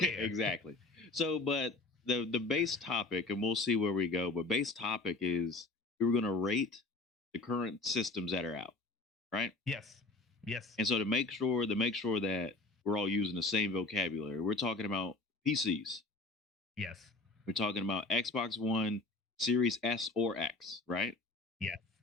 here? Exactly. So, but the base topic, and we'll see where we go, but base topic is we were going to rate the current systems that are out, right? Yes. Yes. And so to make sure that we're all using the same vocabulary, we're talking about PCs. Yes. We're talking about Xbox One, Series S or X, right? Yes.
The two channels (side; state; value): right; quieter; 3.3 dB